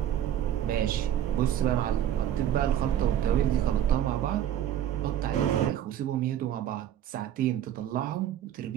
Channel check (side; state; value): left; quieter; 10.9 dB